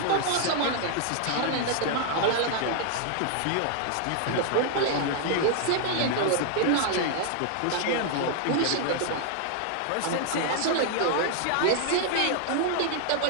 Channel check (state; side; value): different; both; correlation 0.00